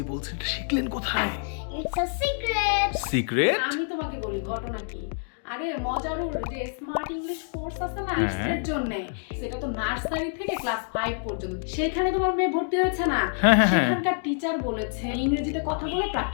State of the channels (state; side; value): silent; right; digital silence